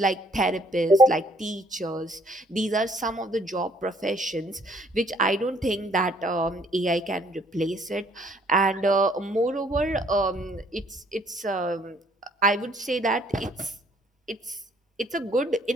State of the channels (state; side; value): normal; both; correlation 0.62